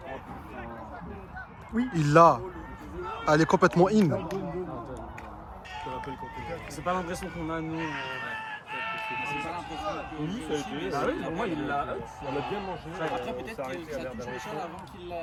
Il l'a. Elle est complètement in. C'est pas l'impression qu'on a, nous. Ah oui, pour moi, il l'a. On a bien mangé. Après, peut-être que ça touche le sol avant qu'il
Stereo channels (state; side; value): identical; both; correlation 1.00